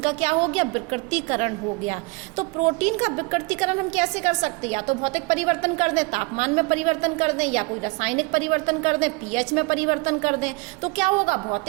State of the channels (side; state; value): left; quieter; 27.6 dB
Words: का क्या हो गया? विकृतीकरण हो गया। तो प्रोटीन का विकृतीकरण हम कैसे कर सकते हैं? या तो भौतिक परिवर्तन कर दें, तापमान में परिवर्तन कर दें, या कोई रासायनिक परिवर्तन कर दें, पीएच में परिवर्तन कर दें। तो क्या होगा?